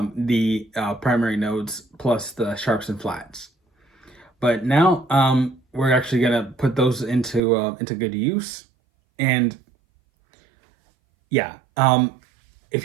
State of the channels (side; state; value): left; drops out; at 7.4 s